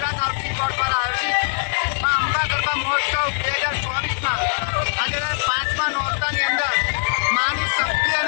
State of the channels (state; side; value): silent; right; digital silence